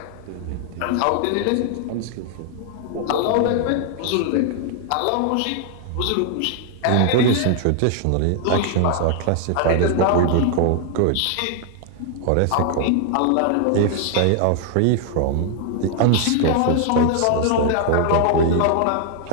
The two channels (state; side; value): different; both; correlation 0.00